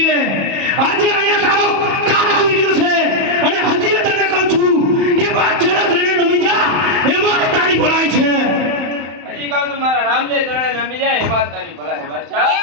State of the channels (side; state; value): left; late; 31 ms